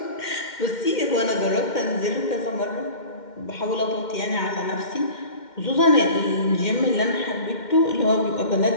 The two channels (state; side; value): late; right; 2.1 ms